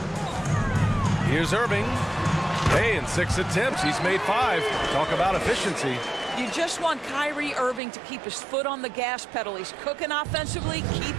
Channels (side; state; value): left; drops out; at 7.8 s